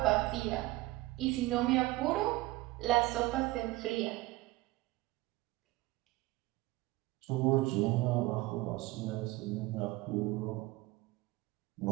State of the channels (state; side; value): quieter; left; 19.5 dB